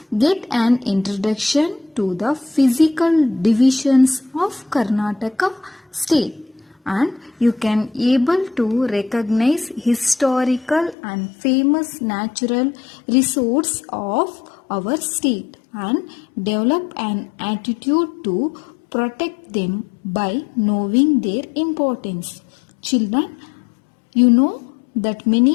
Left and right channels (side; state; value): right; drops out; at 11.0 s